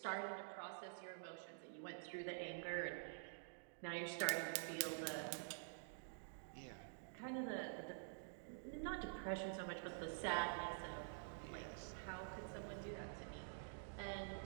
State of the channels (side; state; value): left; silent; digital silence